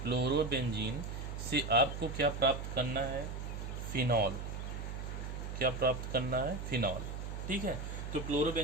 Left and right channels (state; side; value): noise; right; hum, 6 dB below the sound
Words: से आपको क्या प्राप्त करना है, फिनॉल। क्या प्राप्त करना है, फिनॉल। ठीक है, तो